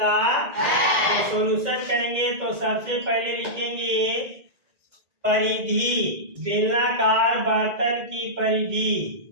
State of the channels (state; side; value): late; left; 1.9 ms